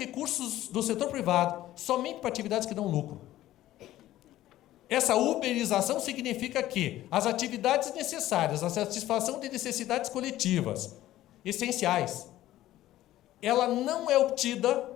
do setor privado somente para atividades que dão lucro. Essa uberização significa que as atividades necessárias à satisfação de necessidades coletivas essenciais, ela não é obtida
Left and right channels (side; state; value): right; quieter; 14.5 dB